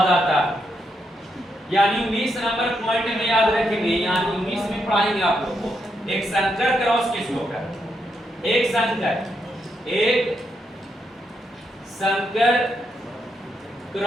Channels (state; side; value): normal; both; correlation 0.81